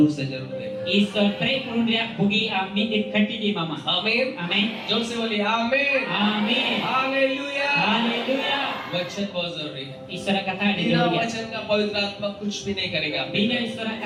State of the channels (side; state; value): both; identical; correlation 1.00